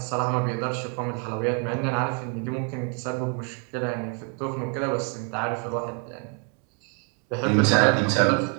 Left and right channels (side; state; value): left; quieter; 39.6 dB